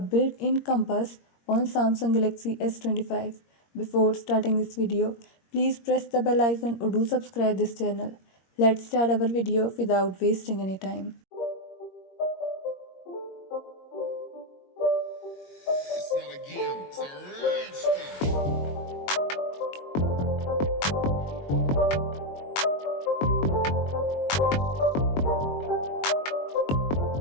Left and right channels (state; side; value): late; right; 21 ms